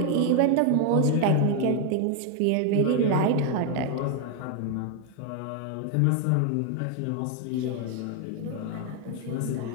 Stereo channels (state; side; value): different; both; correlation 0.00